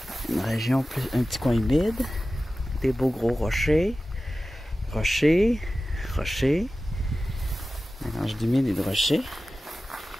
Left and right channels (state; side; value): normal; both; correlation 0.95